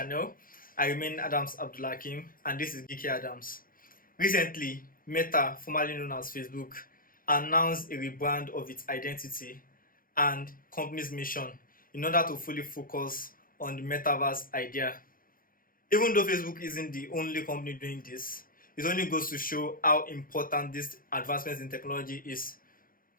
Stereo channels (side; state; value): right; late; 0.41 ms